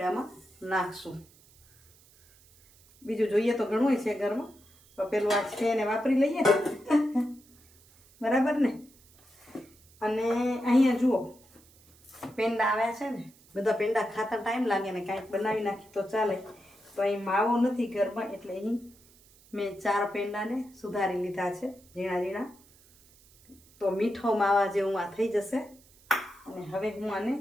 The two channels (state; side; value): noise; right; hiss, 27 dB below the sound